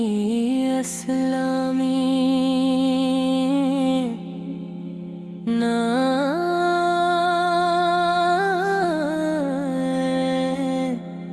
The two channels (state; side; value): identical; both; correlation 1.00